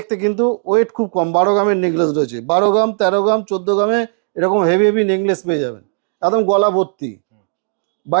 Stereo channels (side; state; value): left; silent; digital silence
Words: কিন্তু ওয়েট খুব কম। 12 গ্রামের নেকলেস রয়েছে, 12 গ্রাম 13 গ্রাম 14 গ্রামে এরকম হেভি হেভি নেকলেস পেয়ে যাবেন, একদম গলা ভর্তি, হুম।